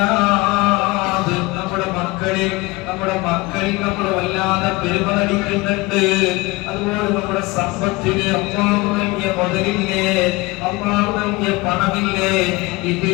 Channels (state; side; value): quieter; right; 22.6 dB